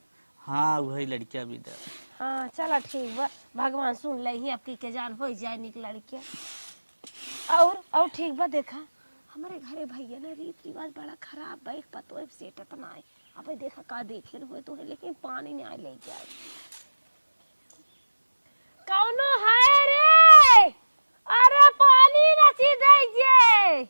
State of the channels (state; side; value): inverted; both; correlation -1.00